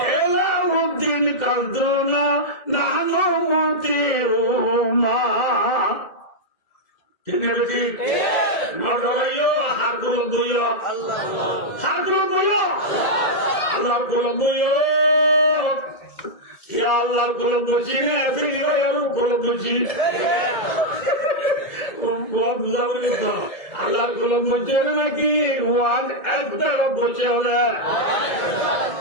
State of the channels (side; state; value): right; late; 2.0 ms